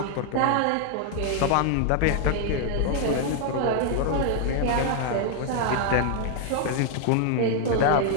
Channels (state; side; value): different; both; correlation 0.00